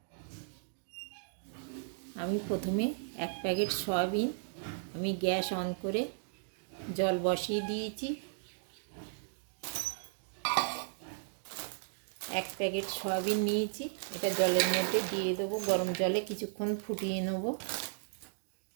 আমি প্রথমে 1 প্যাকেট সয়াবিন আমি গ্যাস অন করে জল বসিয়ে দিয়েছি। 1 প্যাকেট সয়াবিন নিয়েছি, এটা জলের মধ্যে দিয়ে দেবো। গরম জলে কিছুক্ষণ ফুটিয়ে নেব।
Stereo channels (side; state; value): left; silent; digital silence